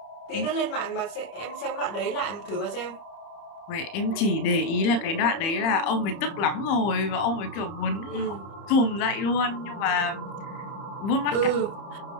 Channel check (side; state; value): right; late; 30 ms